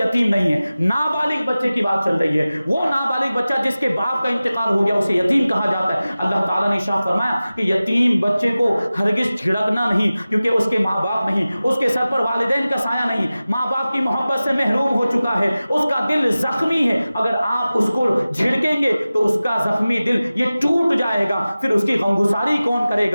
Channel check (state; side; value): inverted; both; correlation -0.96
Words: نہیں ہے. نابالغ بچے کی بات چل رہی ہے. وہ نابالغ بچہ جس کے باپ کا انتقال ہو گیا اسے یتیم کہا جاتا ہے. اللہ تعالیٰ نے ارشاد فرمایا کہ یتیم بچے کو ہرگز جھڑکنا نہیں، کیونکہ اس کے ماں باپ نہیں، اس کے سر پر والدین کا سایہ نہیں، ماں باپ کی محبت سے محروم ہو چکا ہے، اس کا دل زخمی ہے، اگر آپ اس کو جھڑکیں گے تو اس کا زخمی دل یہ ٹوٹ جائے گا، پھر اس کی غمگساری کون کرے